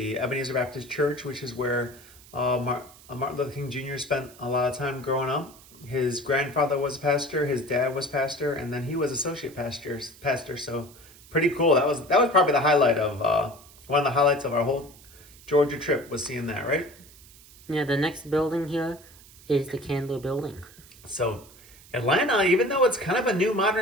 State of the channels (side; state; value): right; noise; hiss, 23 dB below the sound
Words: Ebenezer Baptist Church, which is where Martin Luther King Jr. spent a lot of time growing up. His grandfather was a pastor, his dad was pastor, and then he was associate pastor. So pretty cool. That was probably the highlight of one of the highlights of our whole Georgia trip was seeing that, right? Yeah, the next building here is the Candler Building. So Atlanta, even though it's kind of a new